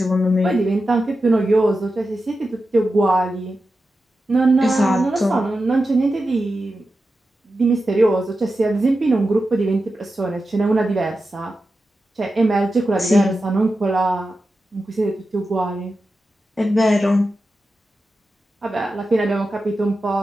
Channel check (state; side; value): normal; both; correlation 0.91